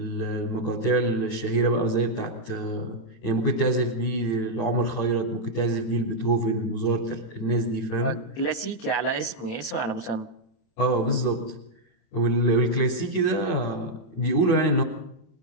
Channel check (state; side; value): late; right; 27 ms